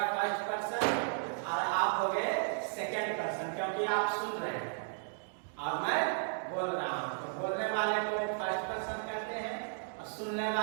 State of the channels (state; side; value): silent; left; digital silence